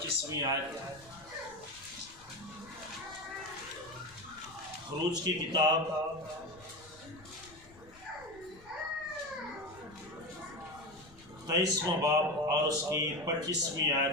آیت۔ خروج کی کتاب تیئیسواں باب اور اس کی 25ویں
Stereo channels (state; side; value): noise; left; rumble, 23 dB below the sound